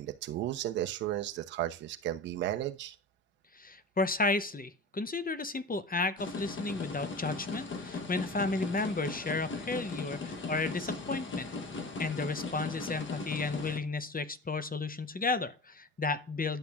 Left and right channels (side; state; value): both; normal; correlation 0.32